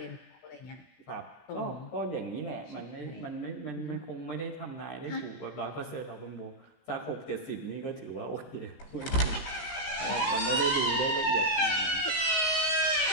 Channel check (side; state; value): right; late; 16 ms